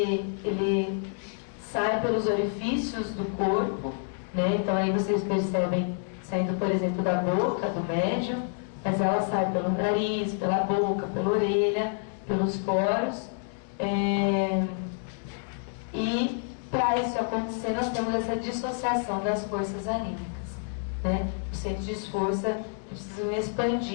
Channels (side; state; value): right; silent; 59 dB below the other